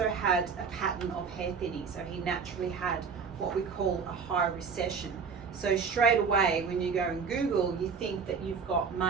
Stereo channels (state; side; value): quieter; left; 5.7 dB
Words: had a pattern of hair thinning. So he naturally had what we call a high recession. So straight away, when you go and Google, you think that you've got